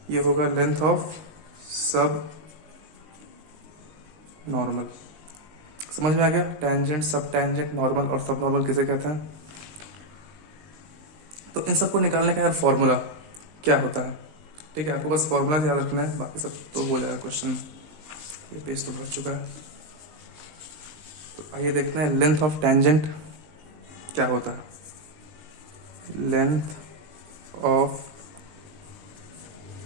ये होगा लेंथ ऑफ सब नॉर्मल। समझ में आ गया, टेंजेंट सब टेंजेंट नॉर्मल और सब नॉर्मल किसे कहते हैं। तो इन सबको निकालने का यार फॉर्मूला क्या होता है, ठीक है। आपको बस फॉर्मूला याद रखना है, बाकी सब तो हो जाएगा क्वेश्चन में। ये पेज तो भर चुका है, तो आइए देखते हैं लेंथ ऑफ टेंजेंट क्या होता है। लेंथ ऑफ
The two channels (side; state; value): left; late; 20 ms